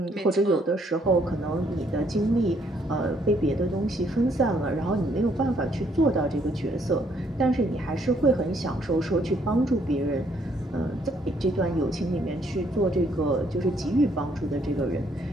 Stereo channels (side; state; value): both; normal; correlation 0.68